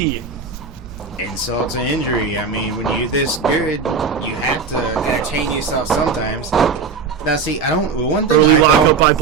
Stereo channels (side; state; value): left; quieter; 5.2 dB